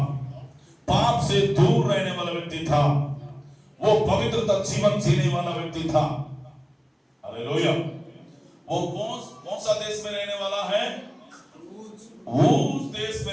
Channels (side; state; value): both; identical; correlation 1.00